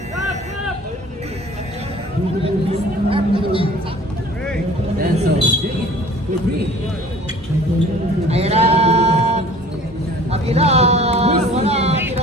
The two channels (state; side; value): normal; both; correlation 0.48